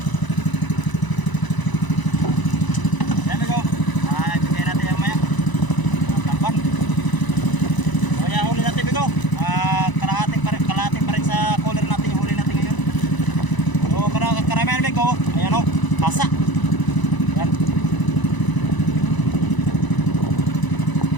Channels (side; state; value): right; late; 1.0 ms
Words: Ayan amigo, ibigay natin yan maya tamban. So yan huli natin amigo, kalahati pa rin sa color natin yung huli natin ngayon. So karamihan amigo, ayan o, pasa. Yan